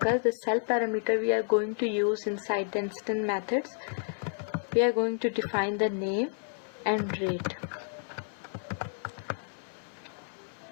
the self parameter we are going to use inside the instant methods. We are going to define the name and rate.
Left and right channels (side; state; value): right; silent; 57 dB below the other